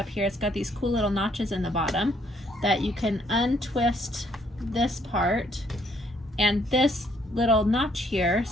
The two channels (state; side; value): normal; both; correlation 0.67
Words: here. It's got these cool little notches in the bottom that you can untwist this part, and this little notch here